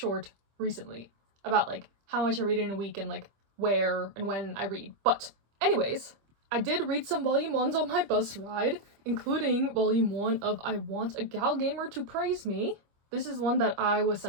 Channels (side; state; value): left; late; 25 ms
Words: recently about like how much I read in a week and like where and when I read. But anyways, I did read some volume 1s on my bus ride, including volume 1 of I Want a Gal Gamer to Praise Me. This is one that I was